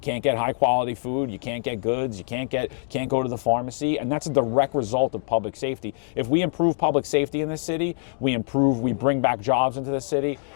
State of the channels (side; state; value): right; silent; 62 dB below the other